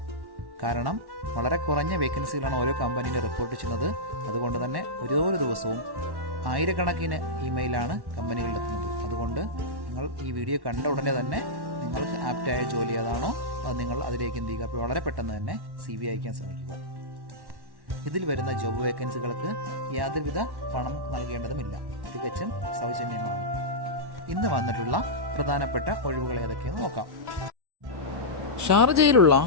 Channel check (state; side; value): late; left; 1.1 ms